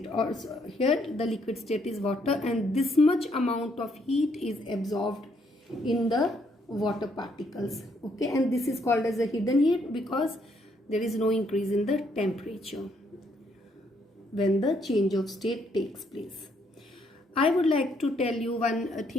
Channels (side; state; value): both; normal; correlation 0.71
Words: or here the liquid state is water, and this much amount of heat is absorbed in the water particles. Okay, and this is called as a hidden heat because there is no increase in the temperature when the change of state takes place. I would like to tell you one